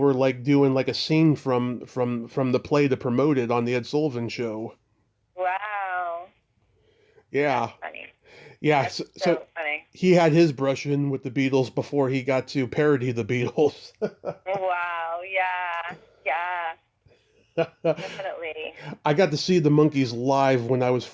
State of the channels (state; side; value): identical; both; correlation 1.00